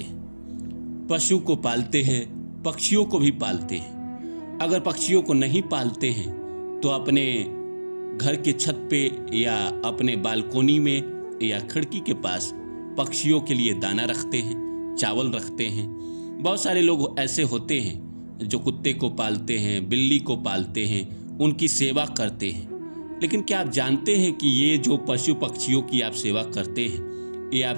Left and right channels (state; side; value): inverted; both; correlation -1.00